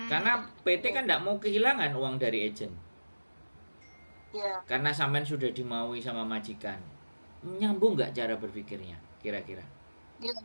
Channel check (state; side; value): inverted; both; correlation -1.00